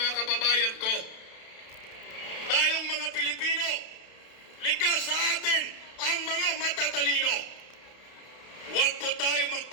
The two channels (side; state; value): right; late; 32 ms